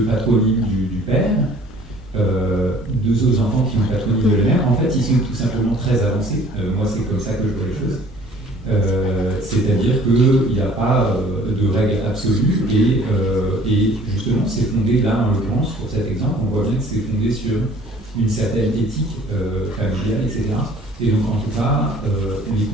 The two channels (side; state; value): both; normal; correlation 0.53